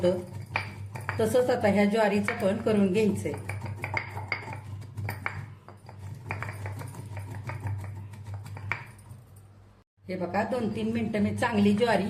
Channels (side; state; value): both; identical; correlation 1.00